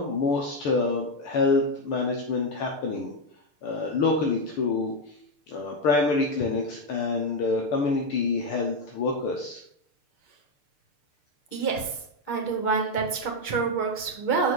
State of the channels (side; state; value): right; late; 6.7 ms